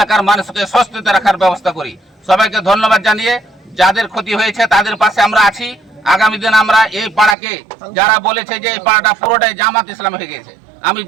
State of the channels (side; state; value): left; drops out; at 7.4 s